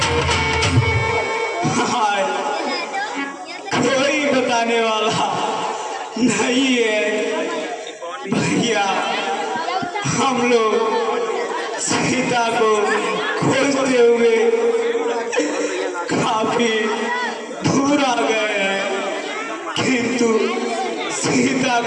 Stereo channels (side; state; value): both; identical; correlation 1.00